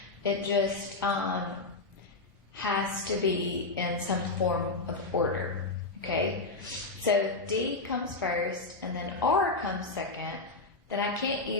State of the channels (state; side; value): quieter; right; 3.5 dB